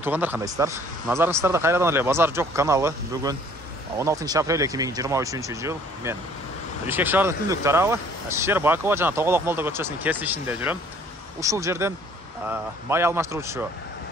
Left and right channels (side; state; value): both; normal; correlation 0.56